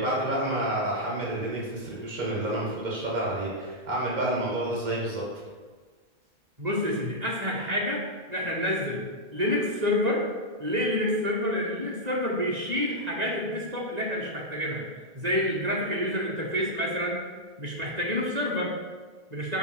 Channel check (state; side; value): late; left; 1.9 ms